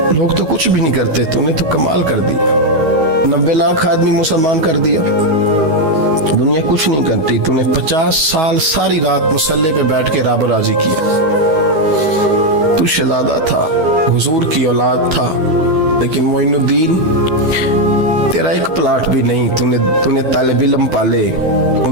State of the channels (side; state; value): left; late; 12 ms